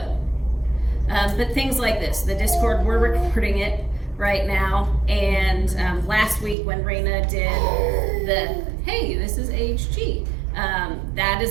But things like this, the Discord, we're recording it right now, and last week when Raina did the, hey, this is HG, that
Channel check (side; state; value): left; drops out; at 6.6 s